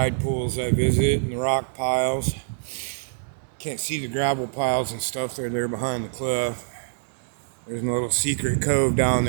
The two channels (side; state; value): left; silent; digital silence